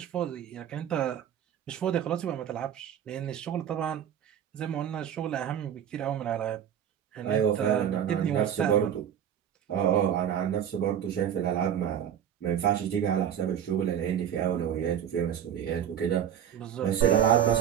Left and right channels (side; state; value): left; quieter; 9.4 dB